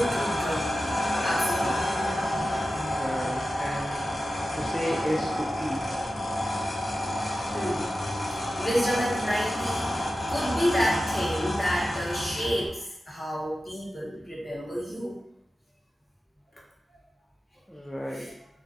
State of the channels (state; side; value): normal; both; correlation 0.93